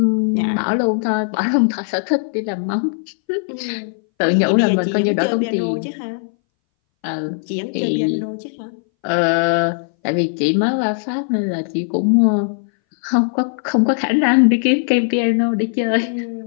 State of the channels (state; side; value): silent; right; 62 dB below the other